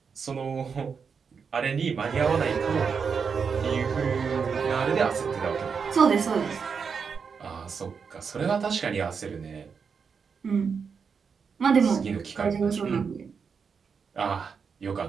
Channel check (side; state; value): left; quieter; 6.0 dB